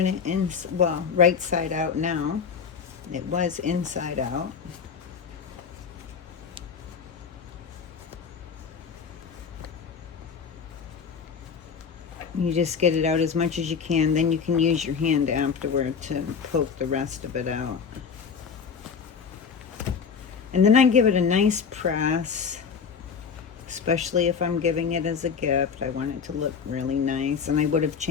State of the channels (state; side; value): quieter; right; 6.2 dB